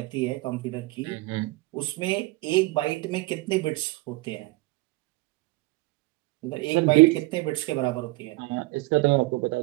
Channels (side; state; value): left; quieter; 21.8 dB